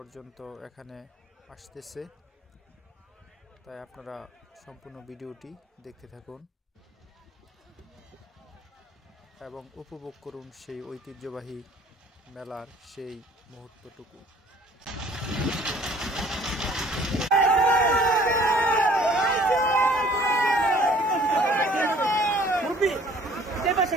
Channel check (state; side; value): normal; both; correlation 0.54